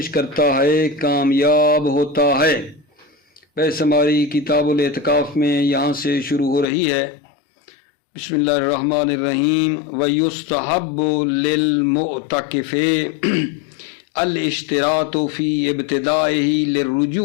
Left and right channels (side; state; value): right; drops out; at 6.7 s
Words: کرتا ہے کامیاب ہوتا ہے۔ بحث ہماری کتاب الاعتکاف میں یہاں سے شروع ہو رہی ہے۔ بسم اللہ الرحمن الرحیم۔ وَيُسْتَحَبُّ لِلْمُعْتَكِفِ الاشتراط فی ابتدائه